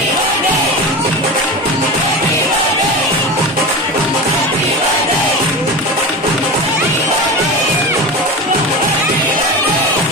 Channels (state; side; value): normal; both; correlation 0.27